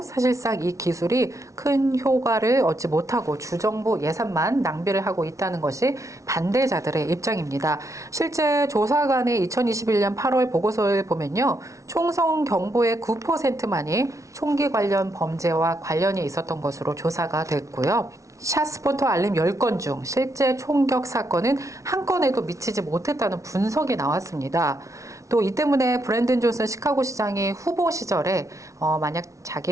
사실상 이 기술이 큰 효과를 얻지 못하고 주정부 예산만 낭비를 하고 있다는 것이 반대자들의 입장입니다. 실제 조사관의 2021년 8월 보고서를 보면요, 총성 경보의 9%만이 총기 관련 범죄와 관련이 있었던 것으로 조사가 됐고요. 샷스포터 알림 10건 중 실제 총격 사건은 한 건에도 미치지 못했다는 분석이 나왔습니다. 또 이 때문에 브랜든 존슨 시카고 시장이 후보 시절에 만약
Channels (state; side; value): late; left; 0.15 ms